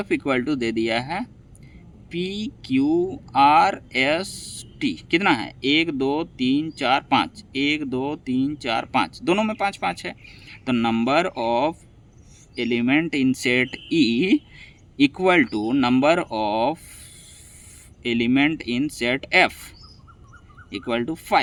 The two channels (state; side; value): identical; both; correlation 1.00